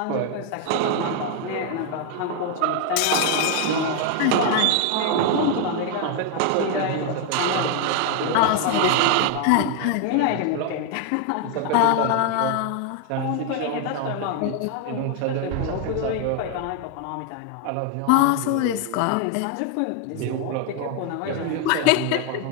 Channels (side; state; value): both; different; correlation 0.00